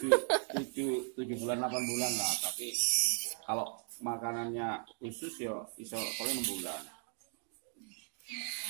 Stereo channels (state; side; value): silent; left; 53 dB below the other